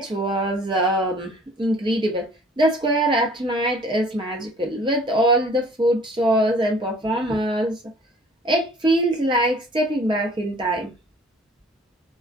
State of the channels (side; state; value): both; normal; correlation 0.52